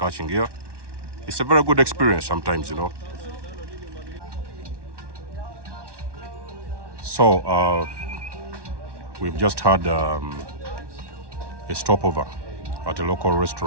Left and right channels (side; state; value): left; late; 1.1 ms